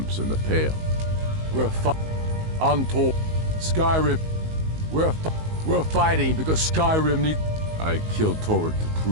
in the Pale. Untold. Skyrim. We're fighting because Skyrim needs... I killed Torrid to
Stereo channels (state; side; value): late; left; 19 ms